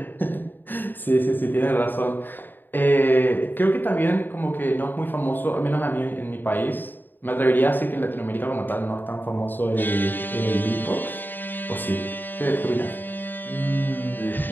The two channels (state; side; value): late; right; 0.092 ms